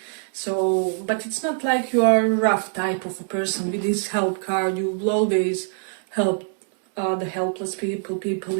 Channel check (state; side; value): silent; left; 63 dB below the other